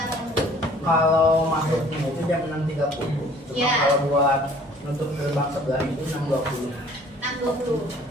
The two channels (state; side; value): normal; both; correlation 0.54